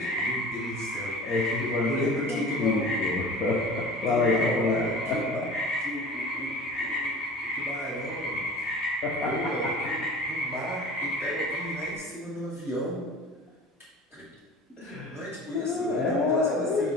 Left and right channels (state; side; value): normal; both; correlation 0.39